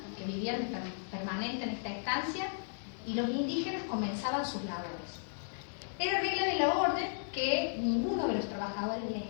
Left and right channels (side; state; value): right; silent; digital silence